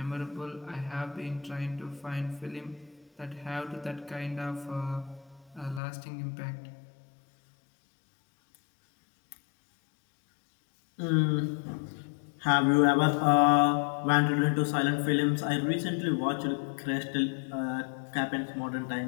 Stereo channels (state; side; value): drops out; right; at 5.8 s